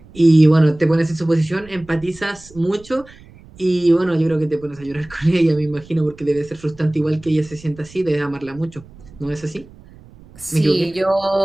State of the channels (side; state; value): right; noise; rumble, 22 dB below the sound